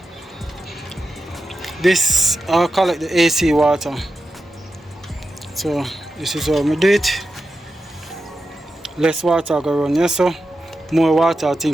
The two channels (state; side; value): normal; both; correlation 0.90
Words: This I'll collect the AC water. So this is how we do it. Less water go run here, so more water I